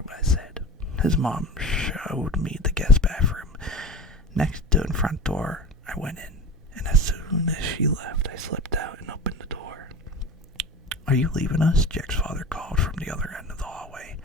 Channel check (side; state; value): both; normal; correlation 0.32